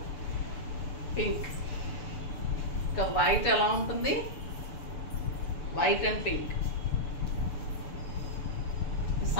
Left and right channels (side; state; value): right; late; 6.9 ms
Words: pink. ఇంకా వైట్ ఎలా ఉంటుంది? White and pink.